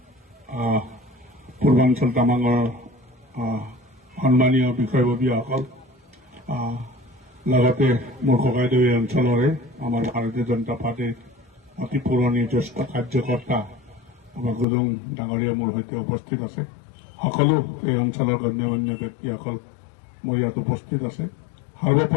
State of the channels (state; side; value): drops out; right; at 14.7 s